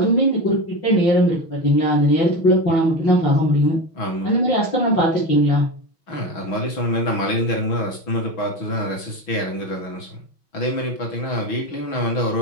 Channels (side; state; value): right; late; 6.1 ms